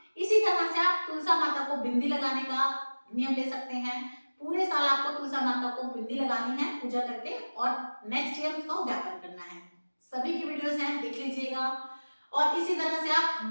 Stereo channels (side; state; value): both; inverted; correlation -1.00